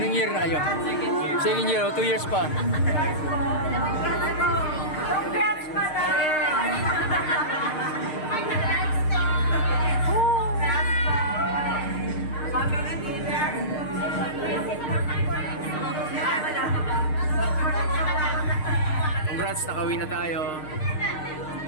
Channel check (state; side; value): late; right; 6.5 ms